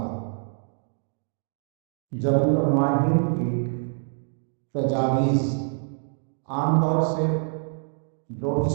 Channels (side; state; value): left; silent; 61 dB below the other